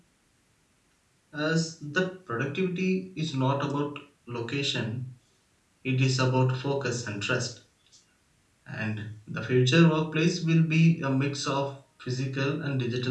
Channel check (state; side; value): identical; both; correlation 1.00